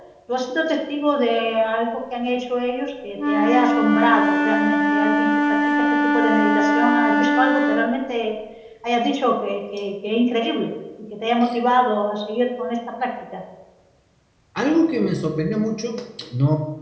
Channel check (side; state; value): both; identical; correlation 1.00